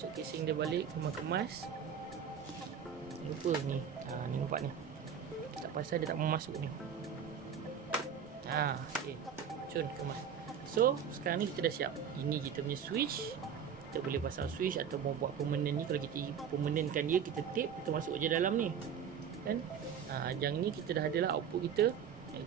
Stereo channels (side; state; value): left; quieter; 7.7 dB